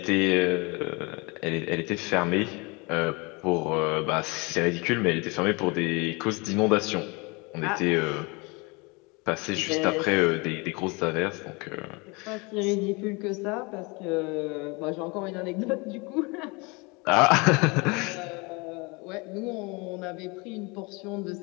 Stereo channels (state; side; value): quieter; right; 27.9 dB